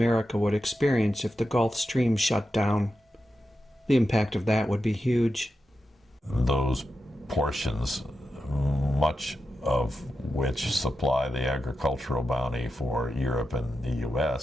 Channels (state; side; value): normal; both; correlation 0.89